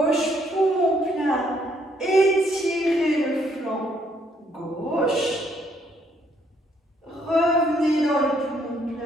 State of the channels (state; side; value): normal; both; correlation 0.69